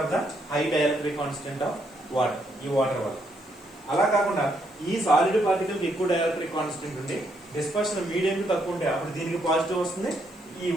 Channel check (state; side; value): noise; right; hiss, 29 dB below the sound